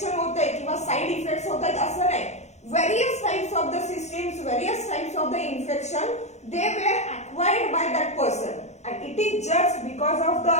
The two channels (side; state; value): right; late; 0.33 ms